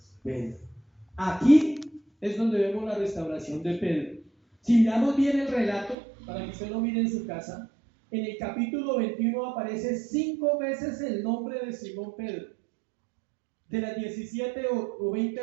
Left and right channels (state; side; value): drops out; left; at 6.0 s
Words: Pedro. Aquí es donde vemos la restauración de Pedro. Si miramos bien el relato, para que usted lo mire en su casa, en el capítulo 21 aparece 5 veces el nombre de Simón Pedro. De las 17 o